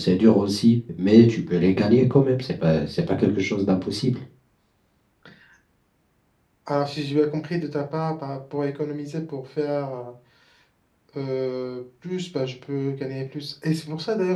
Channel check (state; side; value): identical; both; correlation 1.00